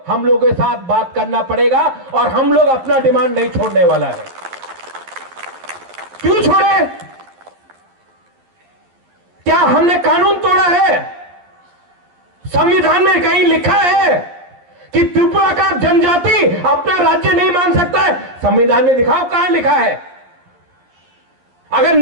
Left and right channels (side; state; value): left; late; 11 ms